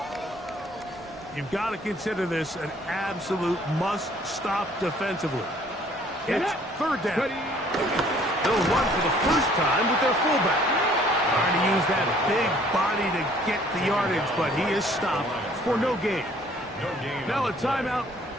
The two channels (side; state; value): both; normal; correlation 0.58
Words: You've got to consider this an absolute must-stop defensively. It's third down. They'll run for the first time with their fullback. Trying to use that big body to get the yardage, but he is stopped for no gain. Now a timeout,